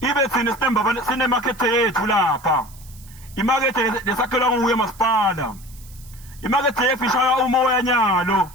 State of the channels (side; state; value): right; noise; hiss, 23 dB below the sound